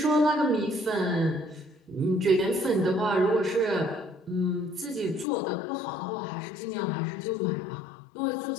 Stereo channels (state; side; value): drops out; right; at 5.2 s